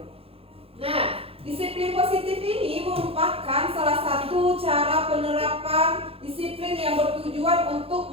Nah, disiplin positif ini merupakan salah satu cara penerapan disiplin yang bertujuan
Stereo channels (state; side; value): late; left; 0.28 ms